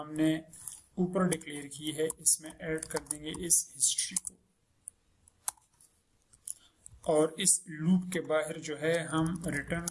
ऊपर डिक्लेयर की है, इसमें ऐड कर देंगे इस हिस्ट्री को, और इस लूप के बाहर जो है हम रिटर्न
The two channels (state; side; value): identical; both; correlation 1.00